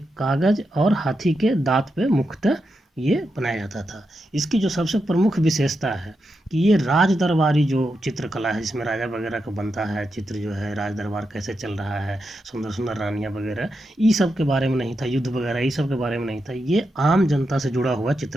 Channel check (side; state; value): both; normal; correlation 0.86